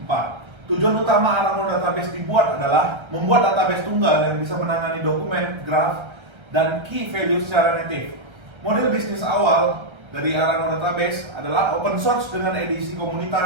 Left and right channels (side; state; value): left; late; 1.3 ms